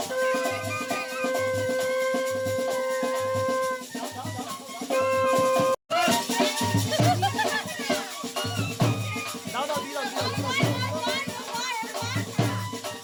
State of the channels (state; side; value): identical; both; correlation 1.00